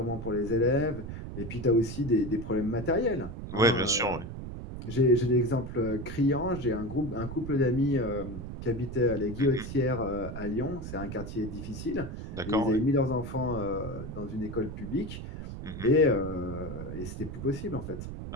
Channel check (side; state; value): right; noise; rumble, 8 dB below the sound